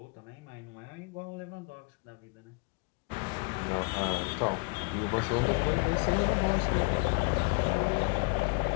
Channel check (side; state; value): right; quieter; 35.7 dB